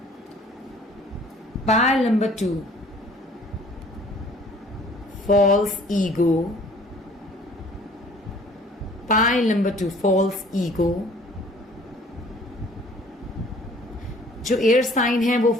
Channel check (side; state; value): both; normal; correlation 0.54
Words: Pile number 2, false ego. Pile number 2, false ego. जो एयर साइन है वो